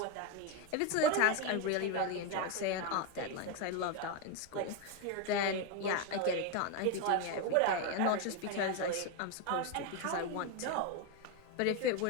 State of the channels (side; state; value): both; different; correlation 0.02